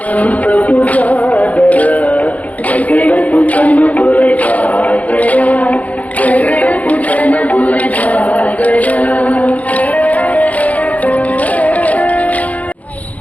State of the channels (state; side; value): late; right; 0.072 ms